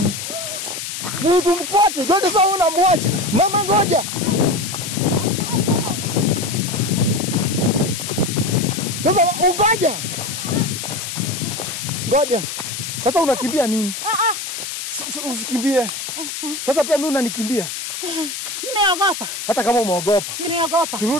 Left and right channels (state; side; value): noise; left; hiss, 6 dB below the sound